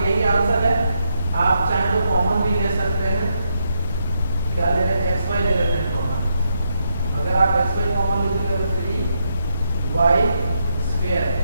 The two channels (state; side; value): inverted; both; correlation -0.80